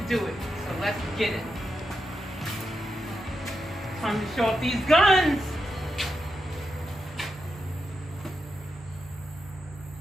do it. So let's get it. Time to show off these guns.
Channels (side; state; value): both; normal; correlation 0.86